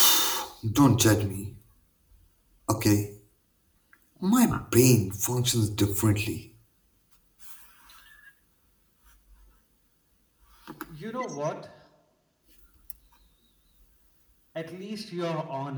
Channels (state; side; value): identical; both; correlation 1.00